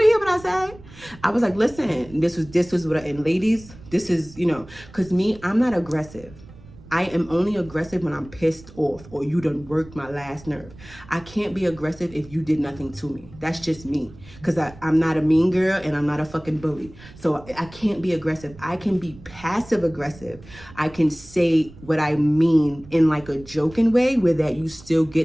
to hear what I said? I was like, listen, this was what and ladies, this is, you know, because me, I'm not aggressive. I am only aggressive when I'm pissed off or you done worked my last nerve. I can't be aggressive if you did nothing to me. That's just me. Because I'm not a mean girl and I'm not a fucking bully. So I can't be aggressive. I can be passive aggressive. I can say what I mean in like a joking way where that you still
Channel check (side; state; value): right; noise; rumble, 20 dB below the sound